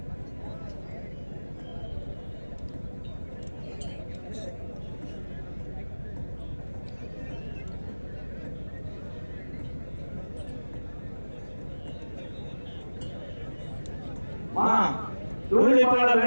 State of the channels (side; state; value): both; inverted; correlation -1.00